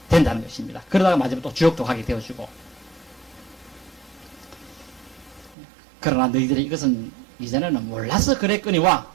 된다는 것입니다. 그러다가 마지막에 또 지옥도 가게 되어지고. 그러나 너희들이 이것은 이전에는 몰라서 그랬거니와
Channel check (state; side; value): drops out; left; at 5.6 s